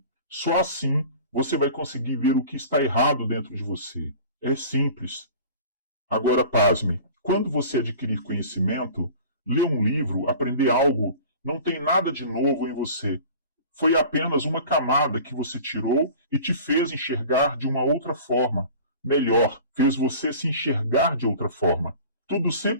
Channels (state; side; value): inverted; both; correlation -0.42